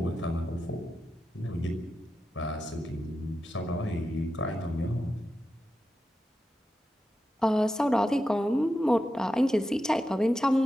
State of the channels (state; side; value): normal; both; correlation 0.89